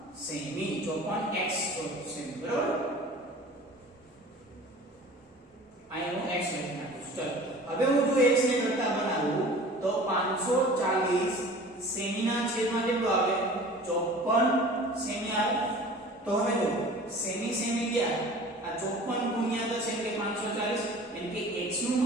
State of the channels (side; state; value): both; normal; correlation 0.43